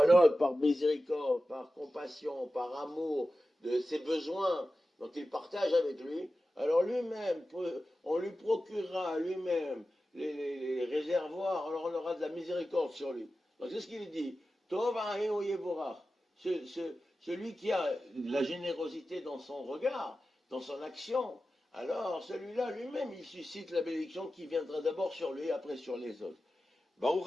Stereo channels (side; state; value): both; normal; correlation 0.94